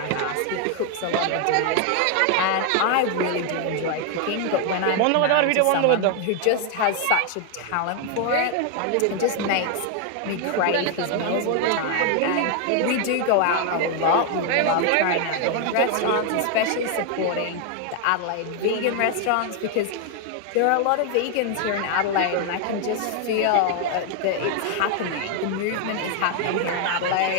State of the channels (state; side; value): different; both; correlation 0.00